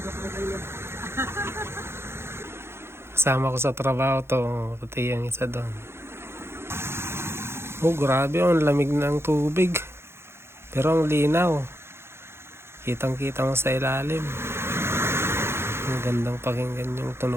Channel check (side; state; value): left; late; 0.12 ms